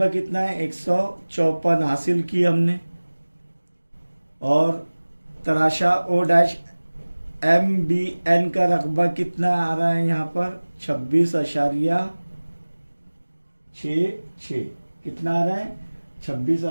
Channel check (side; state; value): both; inverted; correlation -1.00